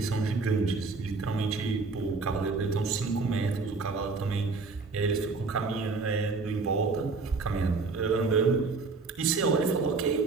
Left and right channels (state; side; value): quieter; left; 4.2 dB